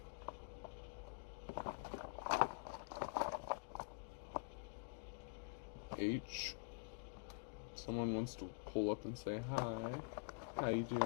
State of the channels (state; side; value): quieter; right; 33.8 dB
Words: H. Someone wants to pull up and say hi. How you